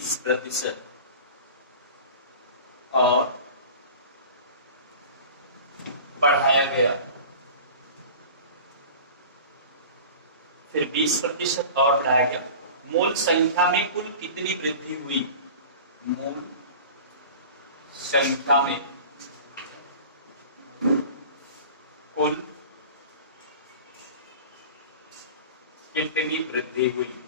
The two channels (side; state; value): both; inverted; correlation -0.38